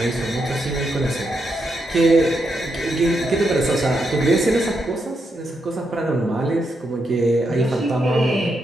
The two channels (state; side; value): normal; both; correlation 0.82